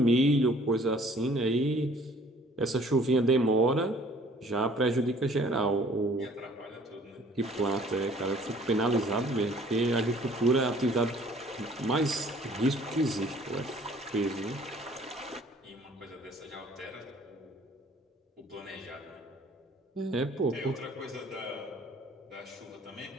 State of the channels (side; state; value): both; normal; correlation 0.55